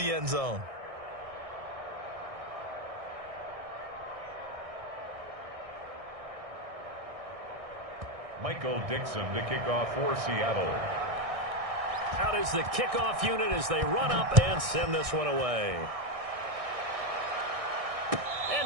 end zone. Michael Dixon to kick off for Seattle. Out is the kickoff unit as they run up and send this one away. And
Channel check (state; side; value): late; left; 1.6 ms